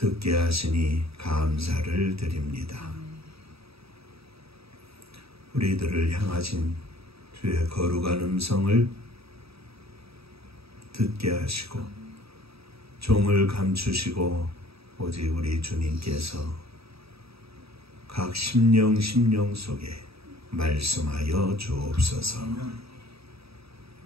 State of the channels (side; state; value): left; late; 0.77 ms